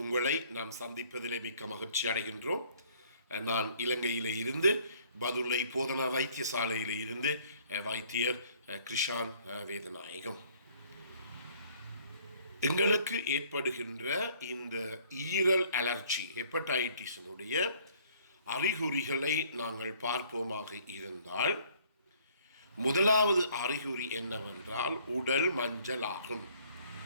நாம் சந்திப்பதிலே மிக்க மகிழ்ச்சி அடைகின்றோம். நான் இலங்கையிலே இருந்து பதுளை போதனா வைத்தியசாலையில் இருந்து வைத்தியர் கிருஷான் வேதநாயகம். எங்களுக்கு ஏற்படுகின்ற இந்த ஈரல் அலர்ஜி ஹெப்படைட்டிஸினுடைய அறிகுறிகளை நாங்கள் பார்ப்போமாக இருந்தால், முதலாவது அறிகுறி என்னவென்றால் உடல் மஞ்சள் ஆகும்.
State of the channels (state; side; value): inverted; both; correlation -0.59